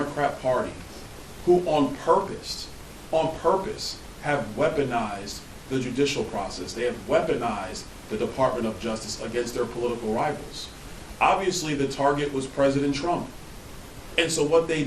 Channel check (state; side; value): identical; both; correlation 1.00